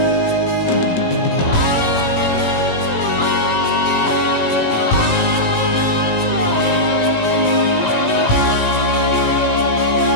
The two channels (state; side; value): late; right; 18 ms